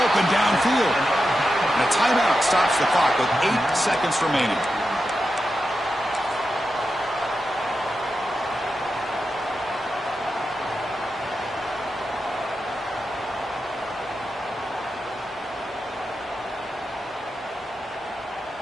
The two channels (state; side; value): normal; both; correlation 0.89